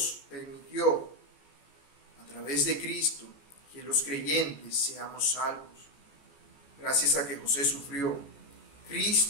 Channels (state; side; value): late; right; 14 ms